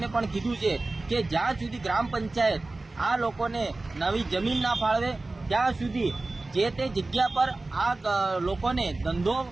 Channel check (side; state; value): left; quieter; 3.2 dB